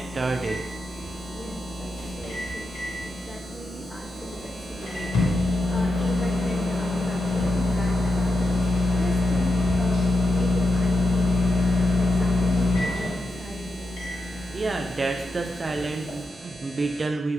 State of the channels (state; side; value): normal; both; correlation 0.87